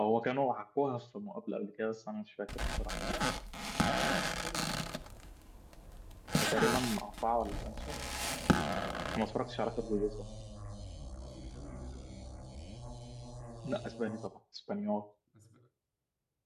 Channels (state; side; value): identical; both; correlation 1.00